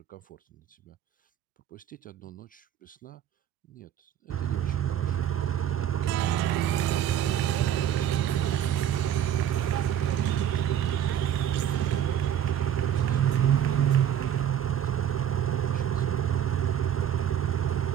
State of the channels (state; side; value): quieter; left; 10.1 dB